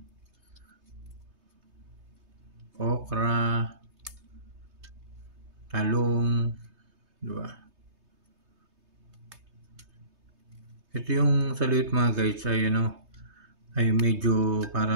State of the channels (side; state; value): left; late; 3.3 ms